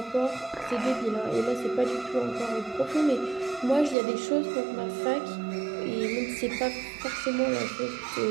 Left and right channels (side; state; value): left; drops out; at 4.0 s